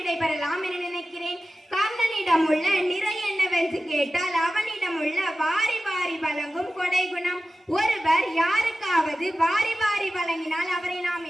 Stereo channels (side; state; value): both; normal; correlation 0.94